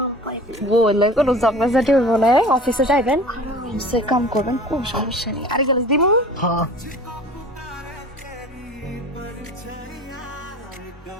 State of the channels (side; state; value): both; normal; correlation 0.42